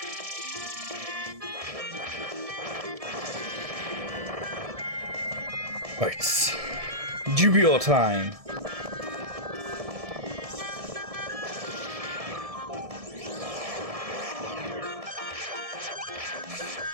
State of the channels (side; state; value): left; late; 1.7 ms